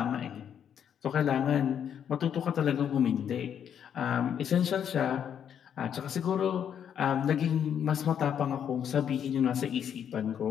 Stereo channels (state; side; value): quieter; right; 8.7 dB